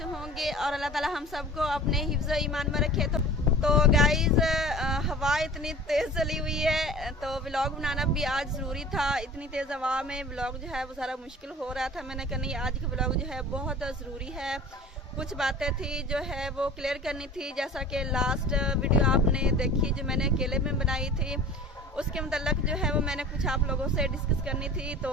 होंगे और अल्लाह ताला हम सबको अपने हिफ्ज़ ईमान में रखे। तो गाइज़ हवा इतनी तेज़ चली हुई है तो व्लॉग बनाना भी आज ज़रूरी था। इतनी तेज़ हवा में व्लॉग जो है वो सारा मुश्किल हो रहा था। मैंने कहा नहीं, आज का व्लॉग जो है बहुत ज़रूरी है। कुछ बातें थी जो है वो क्लियर करनी थी, जैसा कि लास्ट वीडियो आपने देखी जो मैंने अकेले में बनाई थी, उसके मतलब जो है वो मैंने कुछ आप लोगों से डिस्कस करनी थी। तो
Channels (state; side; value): normal; both; correlation 0.41